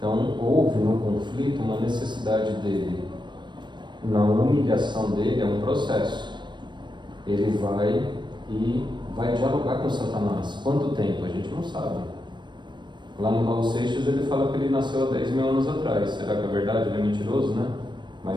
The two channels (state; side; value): late; left; 0.22 ms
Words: houve no conflito uma necessidade dele. Na humilhação dele é um processo. Ele vai e vai dialogar com Satanás. Quanto tempo? A gente não sabe. Lá no Raul Seixas ele fala que ele nasceu há 10 mil anos atrás. Será que é verdade? Ele é mentiroso, né?